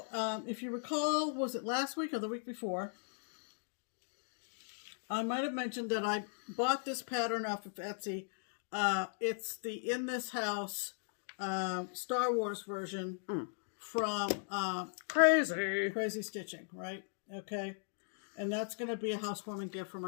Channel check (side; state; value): right; silent; digital silence